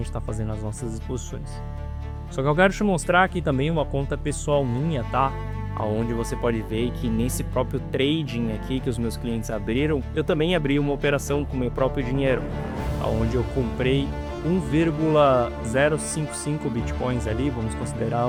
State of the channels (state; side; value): identical; both; correlation 1.00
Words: está fazendo as nossas exposições. Só que eu quero te mostrar aqui também uma conta pessoal minha, tá? Onde você pode ver que nesse próprio trading aqui que os meus clientes abriram, eu também abri uma operação com meu próprio dinheiro, onde eu comprei 1,055 bitcoins ali, vamos considerar